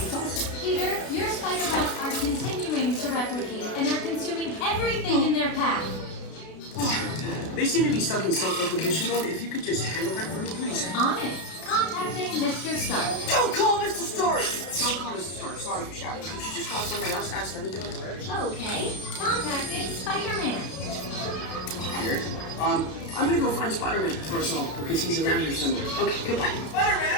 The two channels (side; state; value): right; late; 32 ms